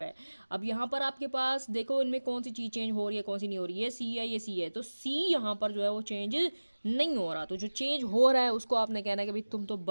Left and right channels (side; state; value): both; inverted; correlation -1.00